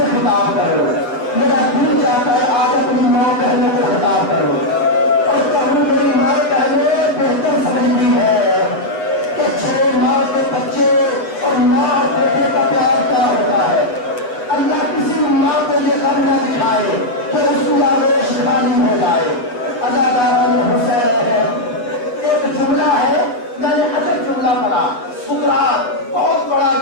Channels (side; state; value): right; late; 8.3 ms